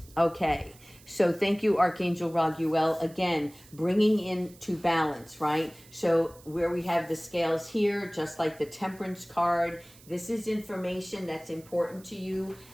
Okay, so thank you, Archangel Raguel. Again, bringing into balance, right? So where we have the scales here, just like the Temperance card, this is information that's important to you,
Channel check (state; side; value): noise; right; hiss, 24 dB below the sound